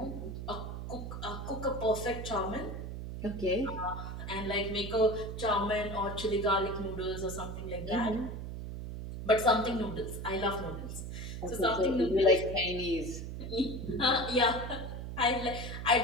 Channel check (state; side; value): noise; right; hum, 7 dB below the sound